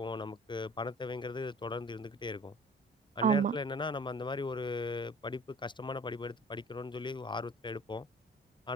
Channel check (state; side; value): normal; both; correlation 0.47